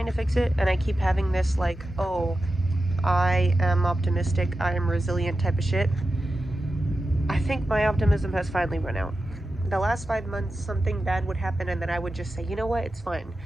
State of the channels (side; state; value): both; normal; correlation 0.92